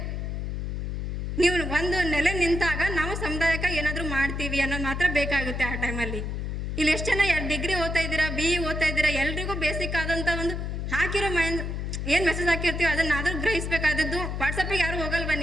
ನೀವು ಒಂದು ನೆಲೆ ನಿಂತಾಗ ನಾವು ಸಮುದಾಯಕ್ಕೆ ಏನಾದರೂ ಮಾಡ್ತೀವಿ ಅನ್ನೋದು ಮಾತ್ರ ಬೇಕಾಗುತ್ತೆ ಆ ಟೈಮಲ್ಲಿ. ಇಲ್ಲಿ ಎಷ್ಟು ಜನ ಡಿಗ್ರಿ ಓದ್ತಾ ಇದ್ದೀರಾ, BE ಓದ್ತಾ ಇದ್ದೀರಾ, ಎಲ್ರಿಗೂ ಬೇಸಿಕ್ ಆದಂಥ ಒಂದು ಹಾಕಿರೋ ಏನು ಮೆಸೇಜ್ ಹಾಕಿರ್ತೀವಿ ಅದನ್ನಾದರೂ ಗ್ರಹಿಸಬೇಕಾದದ್ದು. ವಾಟ್ಸಪ್ಪಿಗೆ ಯಾರು ಹೋಗಲ್ವಾ?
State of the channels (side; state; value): left; noise; hum, 3 dB below the sound